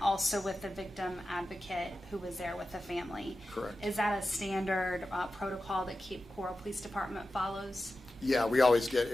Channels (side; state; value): both; normal; correlation 0.93